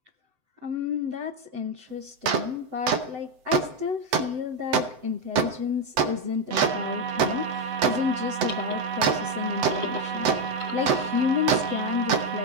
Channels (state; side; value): late; left; 7.8 ms